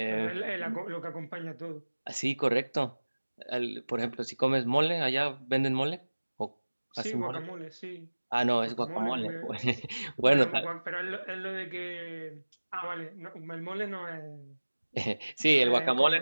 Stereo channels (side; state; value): both; inverted; correlation -1.00